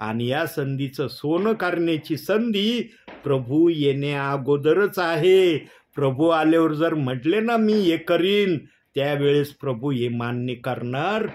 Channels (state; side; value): identical; both; correlation 1.00